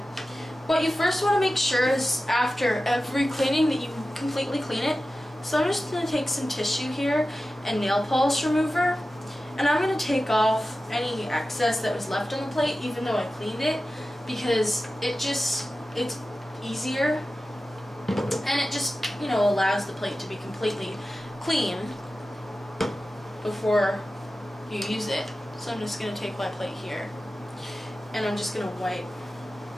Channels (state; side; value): normal; both; correlation 0.94